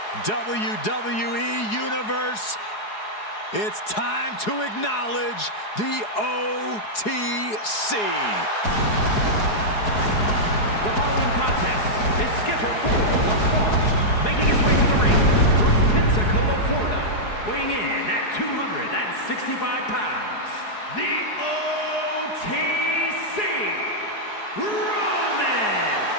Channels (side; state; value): right; late; 4.8 ms